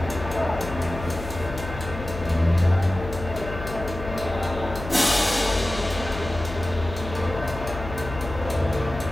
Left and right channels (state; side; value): noise; left; hum, 9 dB below the sound